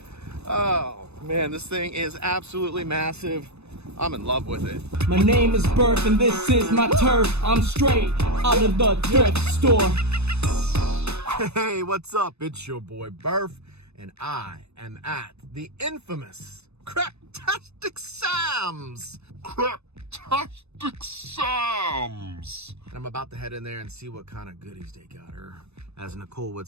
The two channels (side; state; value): left; late; 0.80 ms